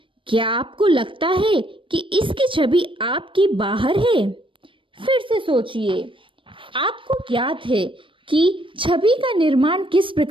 क्या आपको लगता है कि इसकी छवि आपकी बाहर है? फिर से सोचिए, आपको ज्ञात है कि छवि का निर्माण किस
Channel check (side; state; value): left; late; 0.25 ms